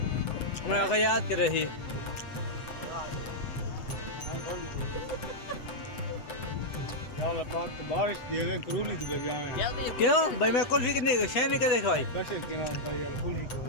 मैं आखा याद कर रही बारिश दिए करूली तो बजाए क्यों भाई मैं कुल्फी कितनी शह नहीं कर भाई बस एक दिन भाई यार कुली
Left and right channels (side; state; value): right; late; 7.9 ms